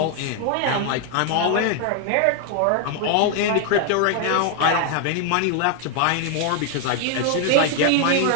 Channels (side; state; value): both; different; correlation 0.00